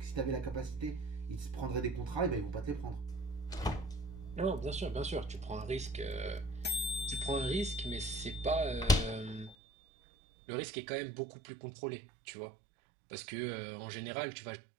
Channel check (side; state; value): left; drops out; at 9.6 s